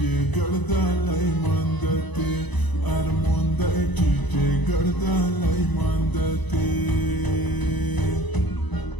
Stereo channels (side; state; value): right; late; 1.0 ms